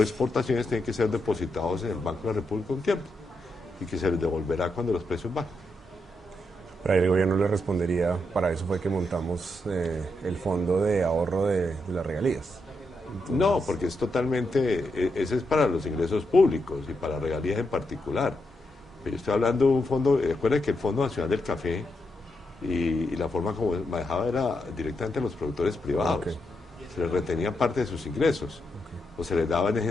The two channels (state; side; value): normal; both; correlation 0.83